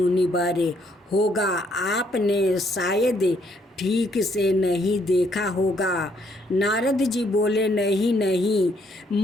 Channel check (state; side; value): normal; both; correlation 0.70